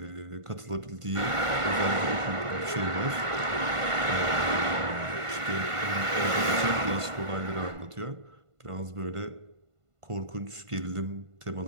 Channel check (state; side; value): late; left; 1.5 ms